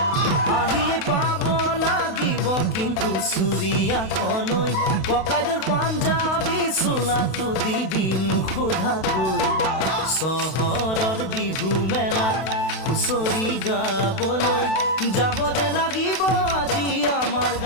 আহিয়ে পাব লাগিব কিন্তু চুৰিয়াখনৈ ককাইদেউৰ পাঞ্জাবী চোলাটো দিবি নোসোধাকৈ চহৰৰ বিহু মেলাত হুঁচৰি গাবলৈ যাব যে লাগিব আজি আমাৰ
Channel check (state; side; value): late; right; 32 ms